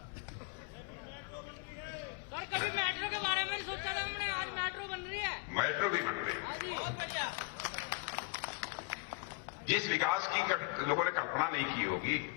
सर, कभी मेट्रो के बारे में सोचा था हमने, आज मेट्रो बन रही है। मेट्रो भी बन रही है। जिस विकास की कभी लोगों ने कल्पना नहीं की होगी,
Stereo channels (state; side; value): quieter; right; 28.7 dB